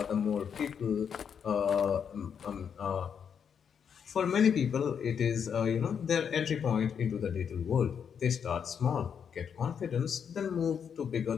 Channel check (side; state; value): right; quieter; 7.4 dB